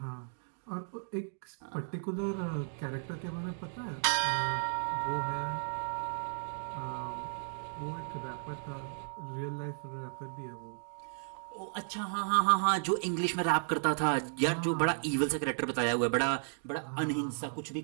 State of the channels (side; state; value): left; silent; digital silence